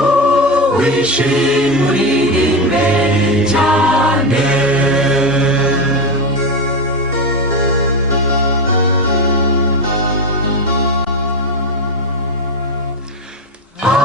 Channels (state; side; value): normal; both; correlation 0.14